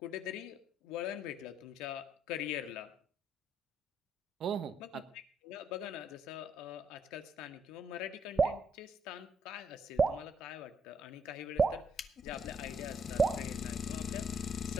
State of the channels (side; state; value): both; normal; correlation 0.73